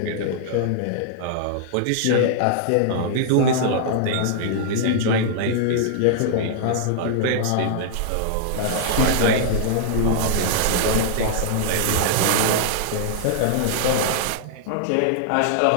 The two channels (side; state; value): both; different; correlation -0.01